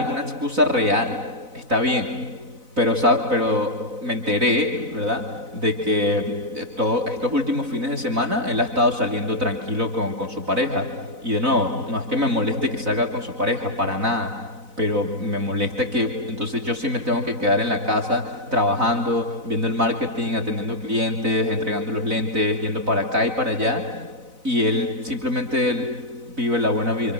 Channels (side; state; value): left; late; 4.0 ms